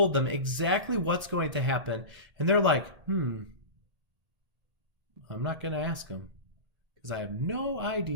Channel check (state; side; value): late; left; 1.7 ms